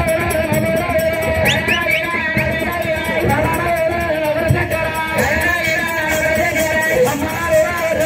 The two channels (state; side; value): identical; both; correlation 1.00